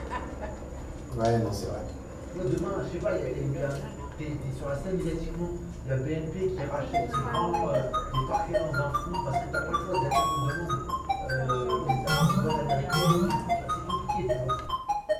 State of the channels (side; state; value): both; identical; correlation 1.00